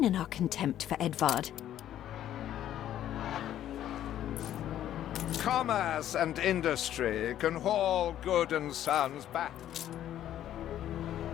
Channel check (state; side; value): quieter; right; 11.7 dB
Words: in our contempt for Edvard. Commerce and industry can haul good and sons back.